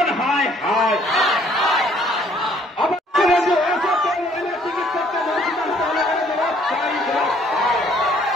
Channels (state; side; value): normal; both; correlation 0.62